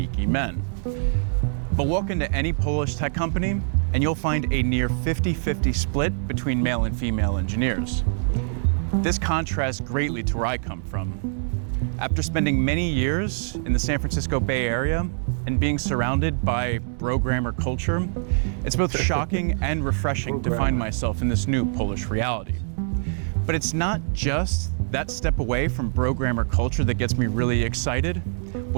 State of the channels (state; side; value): silent; left; digital silence